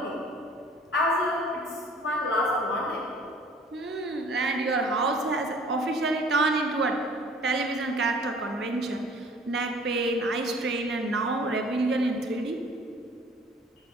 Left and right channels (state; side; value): normal; both; correlation 0.51